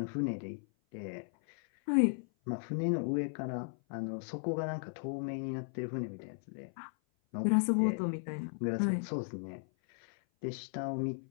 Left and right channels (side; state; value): right; silent; 54 dB below the other